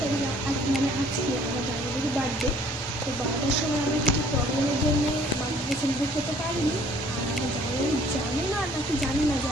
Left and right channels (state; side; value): normal; both; correlation 0.57